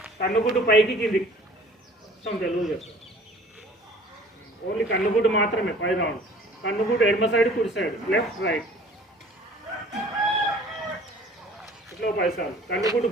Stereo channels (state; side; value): normal; both; correlation 0.50